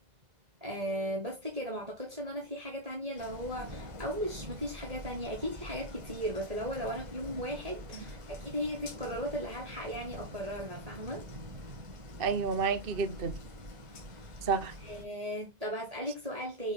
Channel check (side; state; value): left; late; 2.0 ms